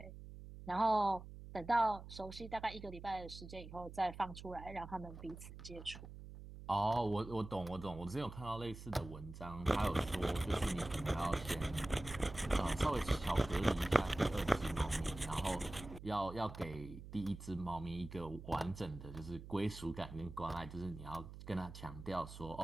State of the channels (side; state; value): right; noise; hum, 13 dB below the sound